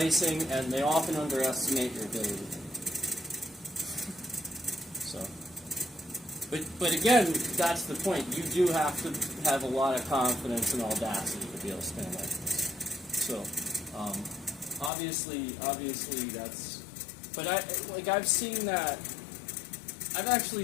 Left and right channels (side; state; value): right; drops out; at 14.9 s